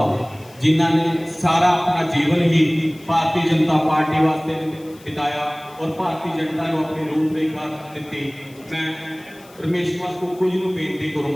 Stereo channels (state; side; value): noise; left; hiss, 25 dB below the sound